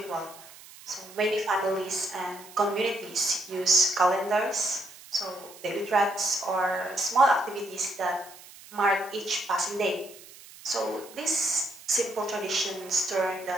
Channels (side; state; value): right; noise; hiss, 19 dB below the sound